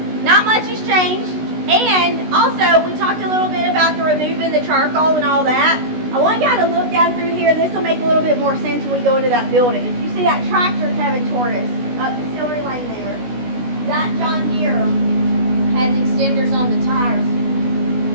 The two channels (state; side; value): late; left; 16 ms